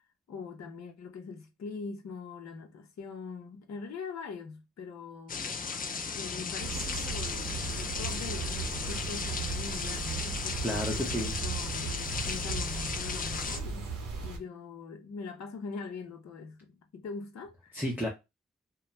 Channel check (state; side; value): normal; both; correlation 0.44